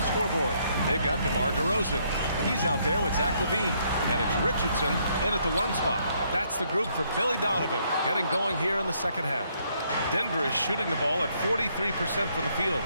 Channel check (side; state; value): both; inverted; correlation -0.70